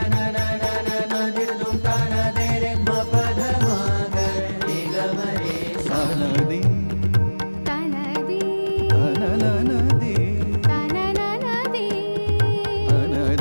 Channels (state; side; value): inverted; both; correlation -1.00